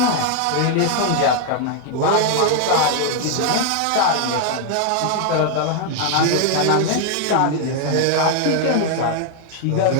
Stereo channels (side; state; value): both; different; correlation 0.00